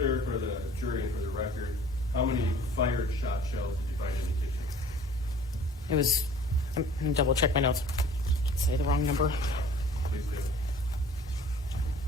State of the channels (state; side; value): normal; both; correlation 0.49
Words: for the jury and for the record, how many fired shot shells did you find in the kitchen? It was, I'm gonna double check my notes. Say the wrong number. Please